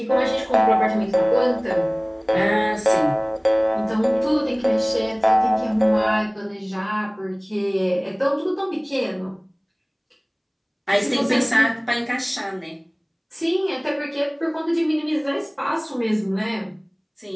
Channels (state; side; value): identical; both; correlation 1.00